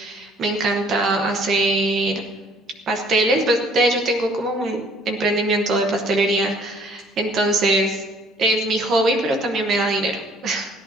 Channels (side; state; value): both; normal; correlation 0.59